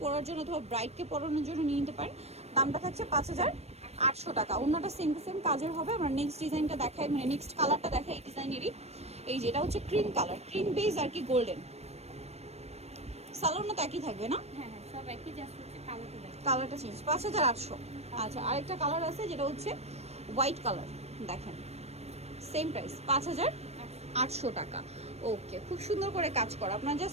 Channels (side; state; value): left; late; 0.31 ms